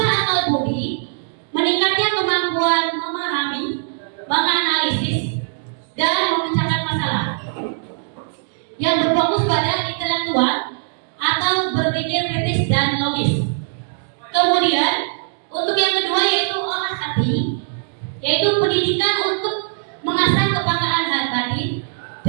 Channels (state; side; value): silent; left; digital silence